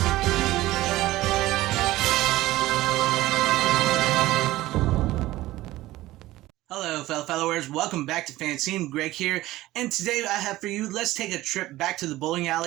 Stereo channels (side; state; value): left; quieter; 16.9 dB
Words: Hello, fellow followers. Welcome back to FanZcene. Greg here, and today I have for you, let's take a trip back to the bowling